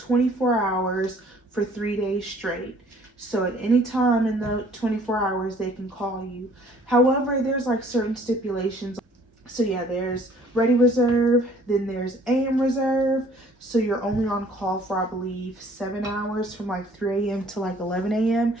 hours for 3 days straight. So at any time in the 24 hours they can call you. However, there's like certain stipulations. So yeah, there's ready reserve, then there's AM reserve. So you're only on call for, I believe, 7 hours from like 3 a.m. to like 11 a.m.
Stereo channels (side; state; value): both; normal; correlation 0.57